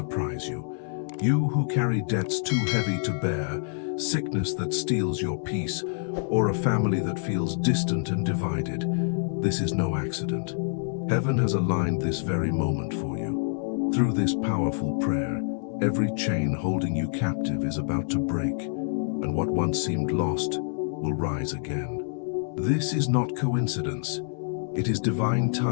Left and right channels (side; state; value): right; silent; digital silence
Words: you. You who carry debts too heavy to bear, sickness that steals your peace, or a family that feels distant and divided, this is no accident. Heaven has aligned this very moment for you. Through this powerful prayer, every chain holding you captive is about to break, and what once seemed lost will rise again. This is not coincidence. It is divine